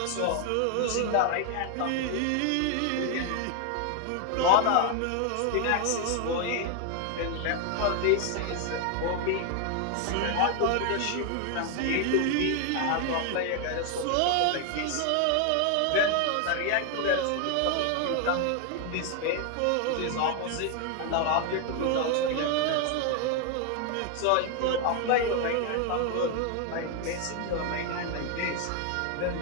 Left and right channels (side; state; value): both; different; correlation 0.00